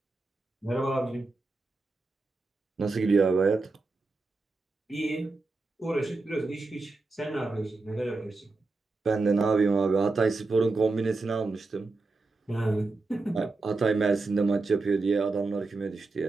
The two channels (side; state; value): left; quieter; 3.6 dB